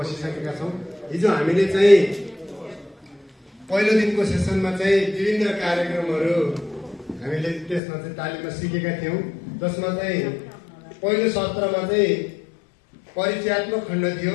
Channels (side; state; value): right; drops out; at 7.8 s